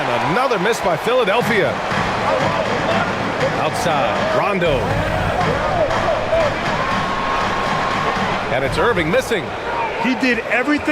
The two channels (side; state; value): both; identical; correlation 1.00